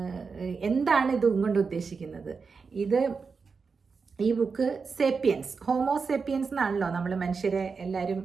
എന്താണ് ഇത് കൊണ്ട് ഉദ്ദേശിക്കുന്നത്. ഈ ബുക്ക് സേപ്പിയൻസ്, ഹോമോസേപ്പിയൻസ് എന്നാണല്ലോ നമ്മൾ മനുഷ്യരെ എല്ലാവരും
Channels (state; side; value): quieter; left; 5.1 dB